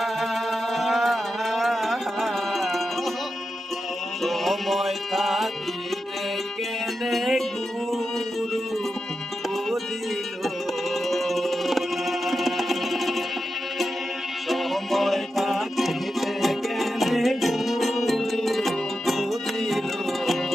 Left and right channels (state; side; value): normal; both; correlation 0.89